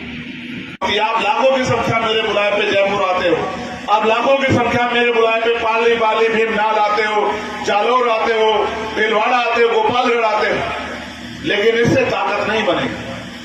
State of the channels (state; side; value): identical; both; correlation 1.00